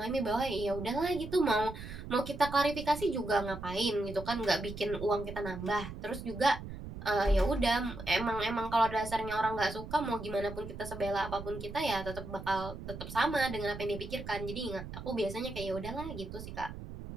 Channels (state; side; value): noise; right; rumble, 10 dB below the sound